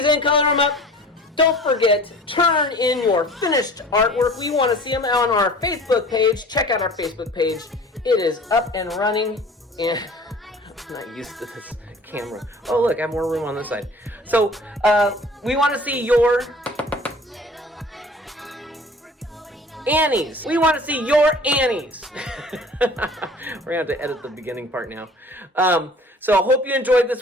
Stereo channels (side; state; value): both; normal; correlation 0.46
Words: in. Color them up. Don't forget, turn in your finished artwork. We want to see them on our Facebook page. Check out our Facebook page. It is up and running. And I'm not used to this camera. Oh, look, I have more room on this side. So we want to see your Annies. We want to see your Annies. We're going to have to edit the beginning part now. So I hope you enjoyed this